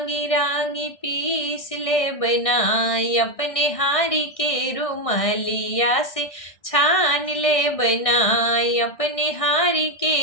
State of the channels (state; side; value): late; right; 1.6 ms